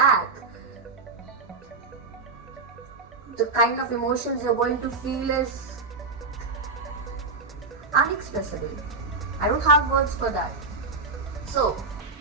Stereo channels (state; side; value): quieter; left; 4.1 dB